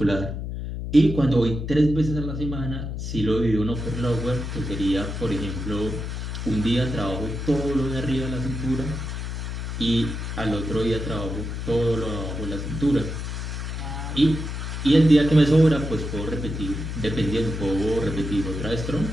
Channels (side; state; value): left; noise; hum, 5 dB below the sound